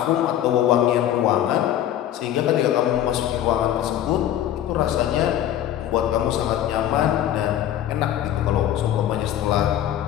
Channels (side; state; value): right; quieter; 11.6 dB